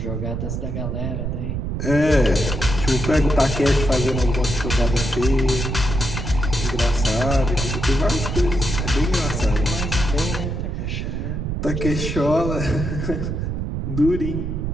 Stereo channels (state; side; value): noise; right; rumble, 3 dB below the sound